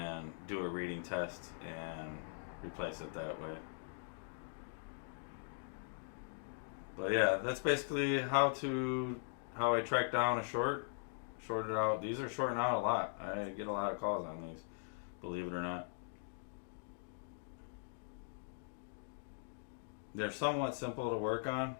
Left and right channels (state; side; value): silent; right; digital silence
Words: do a reading test and replace it that way. But yeah, that's basically how I track down a shorted out. These are shorting out a lot. I get a lot of calls on these, believe it or not. They're somewhat simple to work on